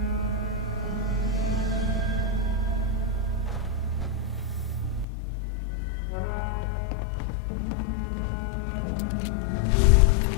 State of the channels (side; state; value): right; drops out; at 5.1 s